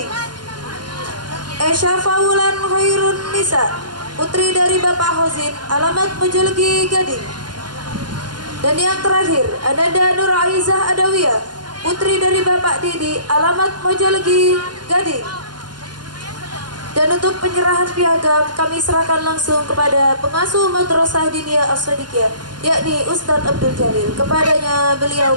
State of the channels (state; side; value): late; left; 0.71 ms